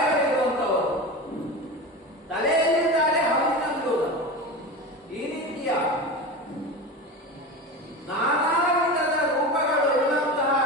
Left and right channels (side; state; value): both; normal; correlation 0.27